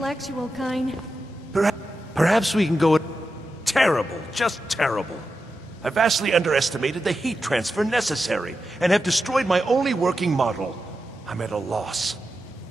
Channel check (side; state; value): both; normal; correlation 0.90